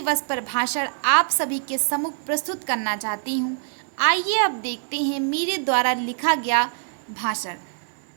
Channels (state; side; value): silent; left; digital silence